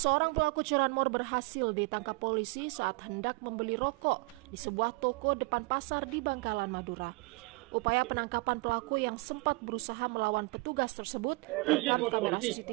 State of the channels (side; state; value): left; quieter; 26.6 dB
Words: pelaku curanmor berhasil ditangkap polisi saat hendak membeli rokok di sebuah toko depan pasar di Bangkalan, Madura. Upaya penangkapan pelaku yang sempat berusaha melawan petugas tersebut terekam kamera